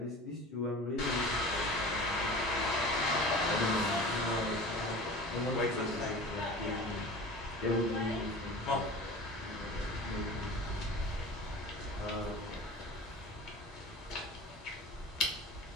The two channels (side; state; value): both; normal; correlation 0.37